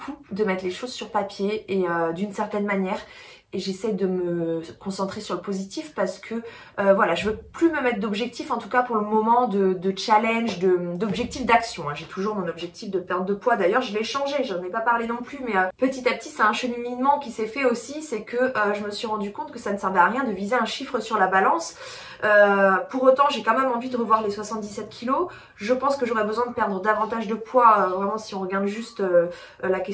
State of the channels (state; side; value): identical; both; correlation 1.00